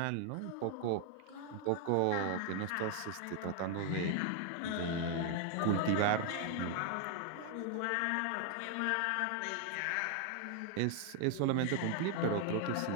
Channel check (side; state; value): both; different; correlation 0.00